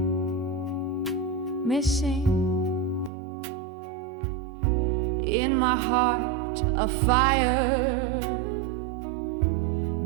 missing in my heart a fire,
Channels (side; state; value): left; drops out; at 3.1 s